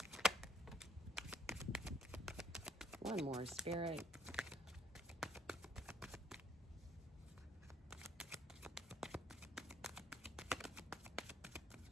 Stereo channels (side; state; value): both; normal; correlation 0.64